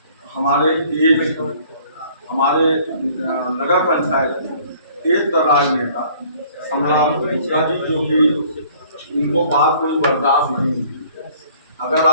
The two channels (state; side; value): inverted; both; correlation -0.56